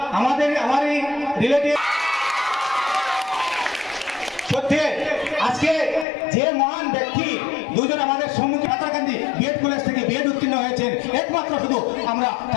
আমারই রিলেটিভ সত্যি আজকে যে মহান ব্যক্তি দুজন আমাদের সম্মুখে হাতাকান্দি বিএড কলেজ থেকে বিএড উত্তীর্ণ হয়েছেন, একমাত্র শুধু আমরা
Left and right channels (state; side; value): drops out; right; at 6.1 s